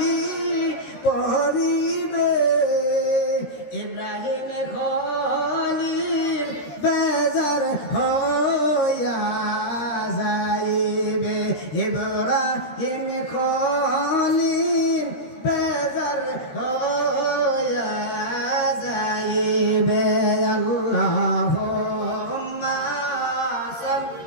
পড়িবে, ইব্রাহিম খলিল বেজার হইয়া যাইবে, ইব্রাহিম খলিল বেজার হইয়া যাইবে। আল্লাহুম্মা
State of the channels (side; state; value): right; late; 13 ms